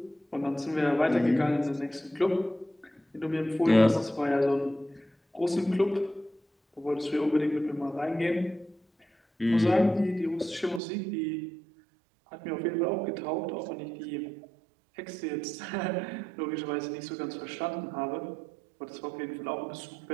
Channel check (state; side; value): drops out; left; at 10.8 s